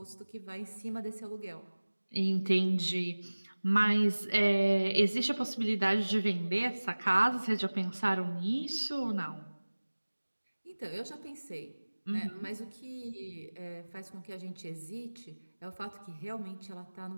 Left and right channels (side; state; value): both; inverted; correlation -1.00